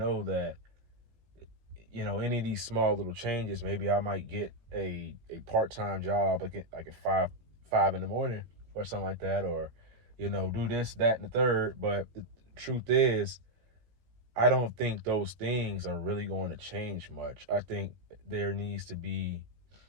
that, any of these small little changes, maybe I might get a part-time job, like at five in the morning or something like that, or, do this, that, and the third. But the truth is, I don't think those things are really going to change much. I think there needs to be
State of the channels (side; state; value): left; late; 17 ms